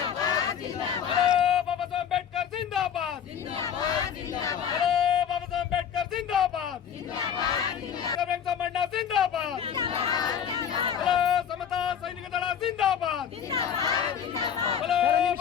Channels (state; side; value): quieter; right; 8.4 dB